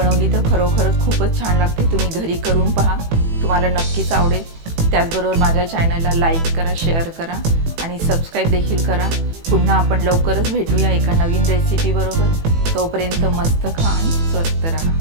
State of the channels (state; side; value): late; left; 18 ms